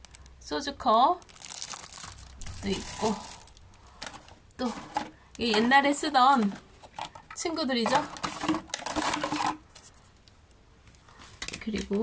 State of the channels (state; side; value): identical; both; correlation 1.00